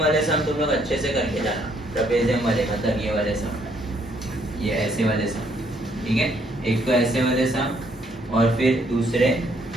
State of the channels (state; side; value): normal; both; correlation 0.69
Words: सम तुम लोग अच्छे से करके जाना, ट्रेपेजियम वाले मतलब ये वाले सम, ये ऐसे वाले सम, ठीक है, एक तो ऐसे वाले सम, और फिर दूसरे